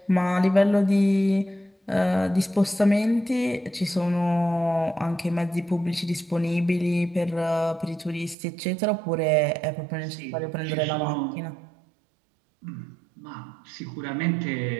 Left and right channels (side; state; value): left; drops out; at 8.3 s